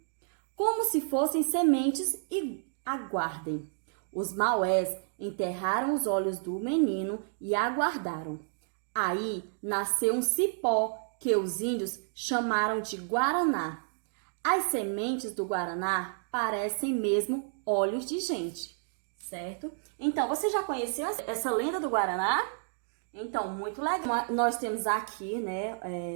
como se fossem sementes, e aguardem. Os Maués enterraram os olhos do menino e aguardaram. Aí nasceu um cipó que os índios chamaram de Guaraná. As sementes do Guaraná parecem mesmo olhos de gente, certo? Então, você já conheceu essa lenda do Guaraná? Então, muito legal. Nós temos aqui, né,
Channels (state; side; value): silent; left; digital silence